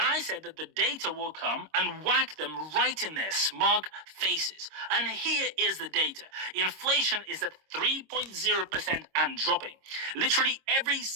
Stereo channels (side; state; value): left; late; 26 ms